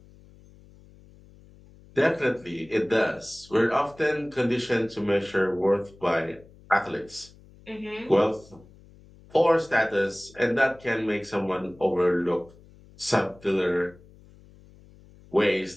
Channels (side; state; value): left; noise; hum, 24 dB below the sound